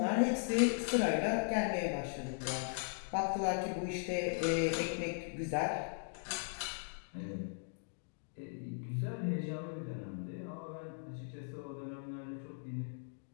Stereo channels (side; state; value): right; silent; digital silence